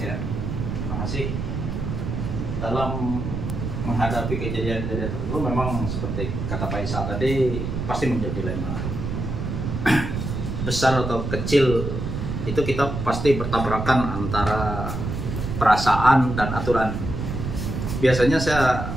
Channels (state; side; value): noise; right; rumble, 4 dB below the sound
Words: terima kasih. Dalam menghadapi kejadian-kejadian tertentu memang seperti kata Pak Isa tadi pasti menjadi dilema. Besar atau kecil itu kita pasti bertabrakan antara perasaan dan aturan. Biasanya saya